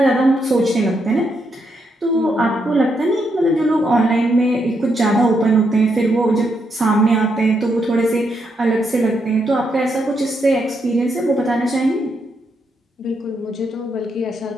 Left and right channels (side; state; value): both; normal; correlation 0.79